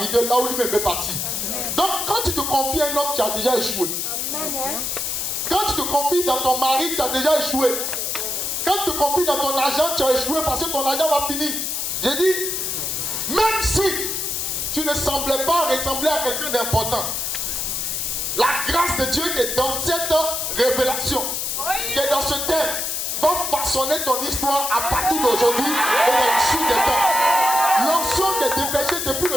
là où lui-même veut partir. Donc quand tu te confies à un homme, tu as déjà échoué. Quand tu te confies dans ton mari, tu as déjà échoué. Quand tu te confies dans ton argent, tu as échoué parce que ton argent va finir. J'ai dit, même si tu ne semblais pas ressembler à quelqu'un d'important, la grâce de Dieu qui est dans cette révélation, qui est dans ce thème, va façonner ton histoire à partir d'aujourd'hui et dans le sud des temps. L'onction qui est dépêchée depuis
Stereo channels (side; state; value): left; noise; hiss, 1 dB below the sound